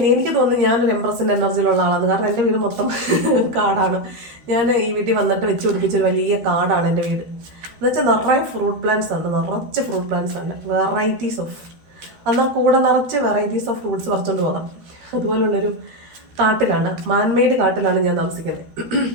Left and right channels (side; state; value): left; late; 13 ms